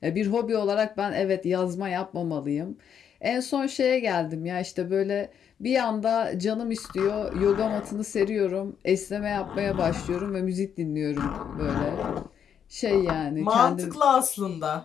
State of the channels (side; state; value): right; quieter; 8.3 dB